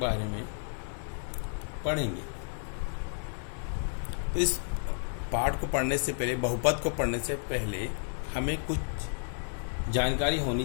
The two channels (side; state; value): right; silent; 57 dB below the other